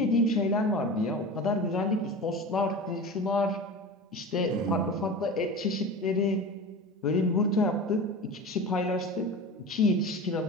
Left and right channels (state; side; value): normal; both; correlation 0.31